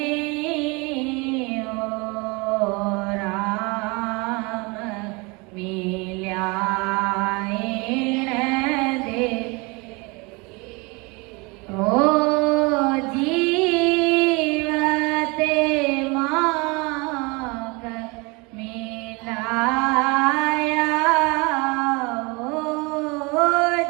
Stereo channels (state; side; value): quieter; left; 27.8 dB